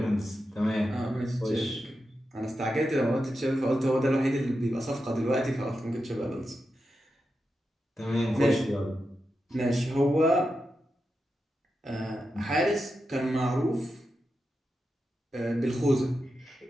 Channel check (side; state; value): both; normal; correlation 0.88